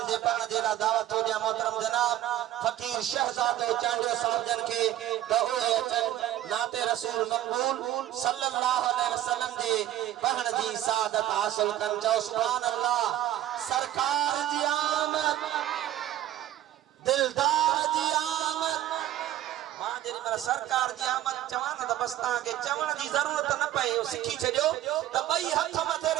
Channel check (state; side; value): quieter; left; 13.0 dB